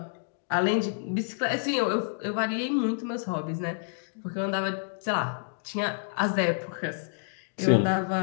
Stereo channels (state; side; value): silent; right; digital silence